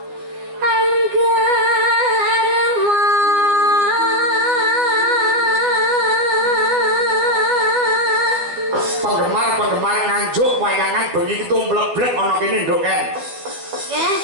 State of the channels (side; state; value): left; late; 12 ms